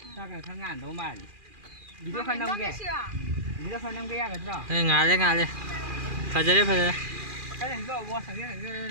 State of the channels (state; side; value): late; left; 2.4 ms